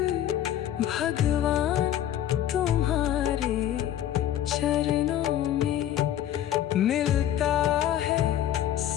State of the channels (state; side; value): quieter; right; 11.4 dB